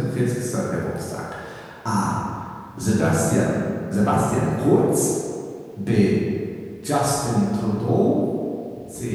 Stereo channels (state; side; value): identical; both; correlation 1.00